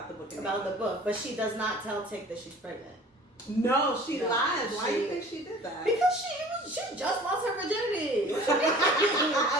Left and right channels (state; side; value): normal; both; correlation 0.46